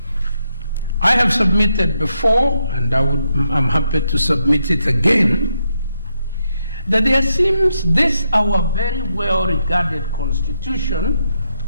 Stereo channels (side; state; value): both; inverted; correlation -0.81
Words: I have submitted before, and I'm happy to submit it again, that there seems this our very well regarded constitution,